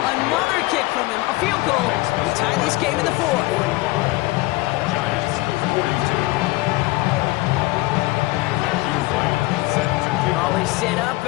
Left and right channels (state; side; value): quieter; right; 20.9 dB